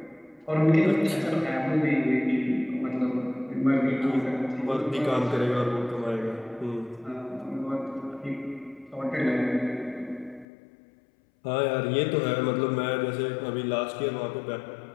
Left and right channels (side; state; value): right; drops out; at 10.5 s